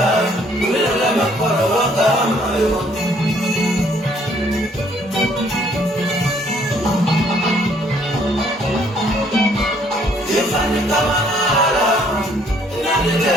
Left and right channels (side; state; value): both; normal; correlation 0.64